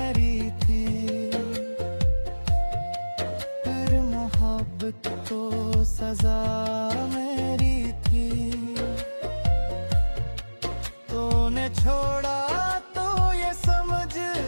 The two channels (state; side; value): inverted; both; correlation -1.00